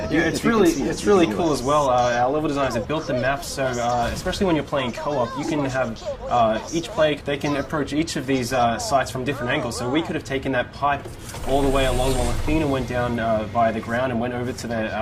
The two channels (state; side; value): identical; both; correlation 1.00